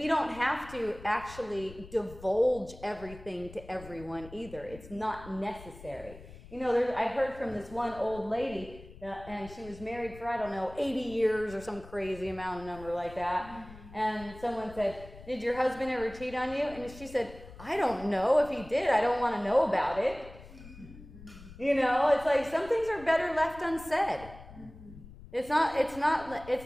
don't have to actually divulge everything to everyone either. It's not necessary. You know, I heard from this one old lady, and she was married for, 80 years or some crazy amount of number like that. And someone said, did your husband ever cheat on you? And she said, I don't know. If he did, I don't want to know about it. You know, it's like some things are better left unsaid. It's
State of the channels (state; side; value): noise; left; rumble, 17 dB below the sound